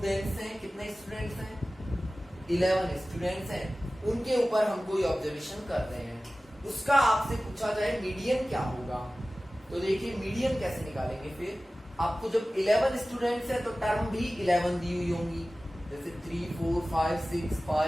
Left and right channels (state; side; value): normal; both; correlation 0.96